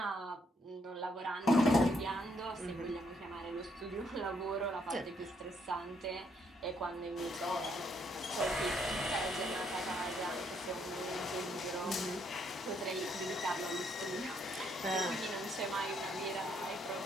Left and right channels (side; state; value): both; normal; correlation 0.72